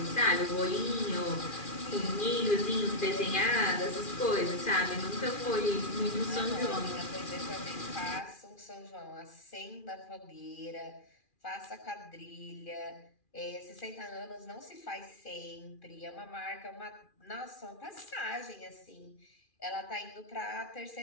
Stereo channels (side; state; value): right; late; 2.4 ms